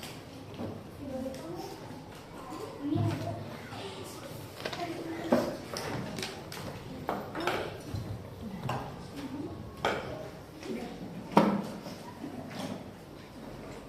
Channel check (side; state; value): both; identical; correlation 1.00